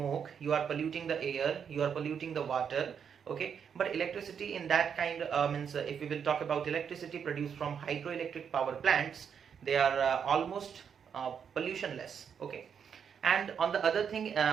you are polluting the air, you are polluting the water, okay. But electricity in that kind if we will talk about electricity produced from hydroelectric power plants, they are almost pollutionless, okay. And on the other thing,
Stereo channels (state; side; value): quieter; left; 7.4 dB